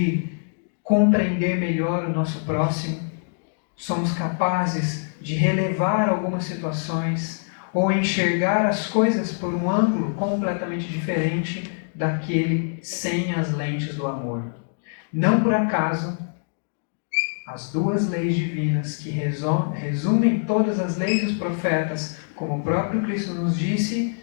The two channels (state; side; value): silent; right; digital silence